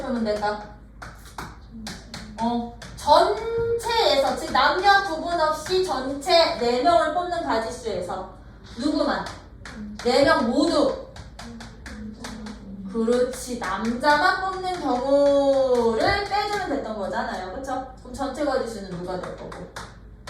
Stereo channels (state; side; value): identical; both; correlation 1.00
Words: 풀면 될까? 전체에서, 즉 남녀 구분 없이 전체 4명을 뽑는 가지수에서 누구만? 4명 모두. 그렇지. 남자만 뽑는 경우를 빼주면 됐던 거잖아요. 그쵸? 그럼 전체 가지수는 누가 될 거고?